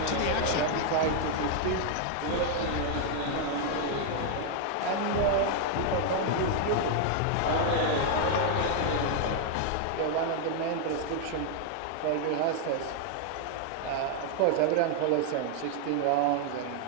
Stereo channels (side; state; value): both; different; correlation 0.00